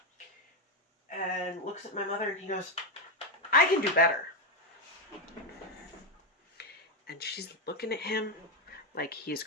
and looks at my mother and he goes, I can do better. And she's looking at him like he's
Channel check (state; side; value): normal; both; correlation 0.07